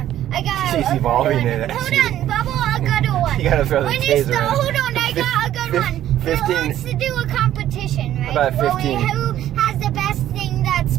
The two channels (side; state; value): left; quieter; 12.2 dB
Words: I got. She's evolving in it. Hold on, Bubble. I got a one. You gotta throw the When taser you start, in. hold on, I got a good one. 15 Let's do a competition, right? About 15. Who has the best thing that's